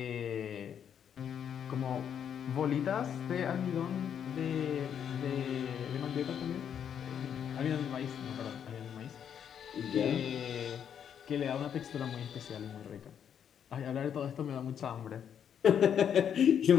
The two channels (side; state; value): right; quieter; 8.5 dB